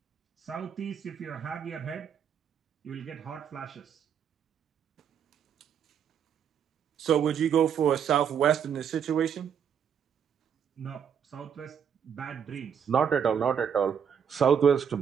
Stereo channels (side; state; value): left; quieter; 7.8 dB